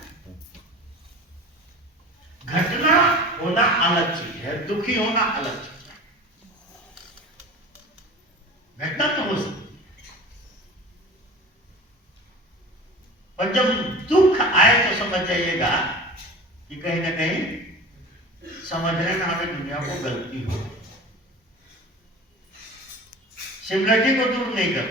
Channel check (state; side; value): normal; both; correlation 0.36